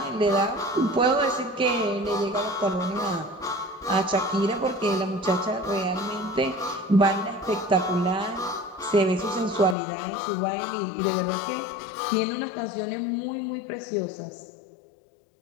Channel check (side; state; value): right; drops out; at 9.8 s